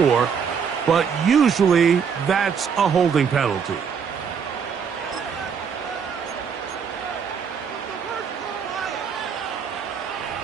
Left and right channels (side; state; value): left; quieter; 6.8 dB